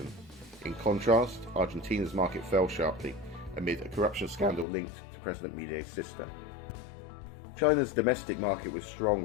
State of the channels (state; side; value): drops out; right; at 4.7 s